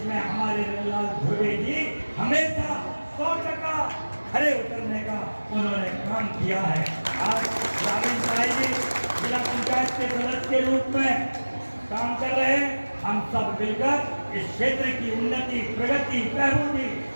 हमारे रंगलाल धुर्वे जी हमेशा 100% खड़े उतरने का उन्होंने काम किया है। आज रावीन साई जी जिला पंचायत के सदस्य के रूप में काम कर रहे हैं। हम सब मिलकर इस क्षेत्र की उन्नति, प्रगति, बहबूदी,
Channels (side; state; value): both; inverted; correlation -1.00